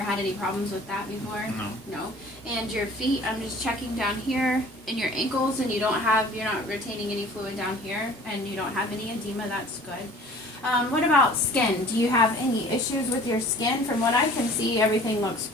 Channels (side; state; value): both; normal; correlation 0.48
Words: had any problems with that before? No. No. And your feet, I'm just checking down here in your ankles, and you're not retaining any fluid down here, and you don't have any edema. That's good. What about skin? Do you have any issues with your skin? From what I can see, everything looks